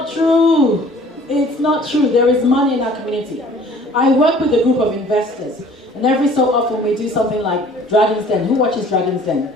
true. It's not true. There is money in our community. I work with a group of investors, and every so often we do something like Dragon's Den. Who watches Dragon's Den?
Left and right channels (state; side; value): normal; both; correlation 0.52